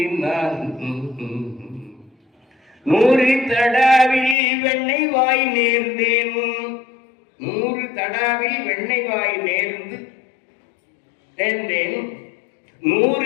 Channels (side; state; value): right; drops out; at 4.4 s